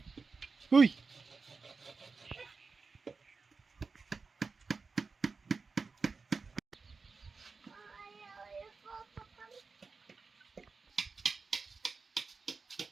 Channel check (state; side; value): quieter; left; 4.5 dB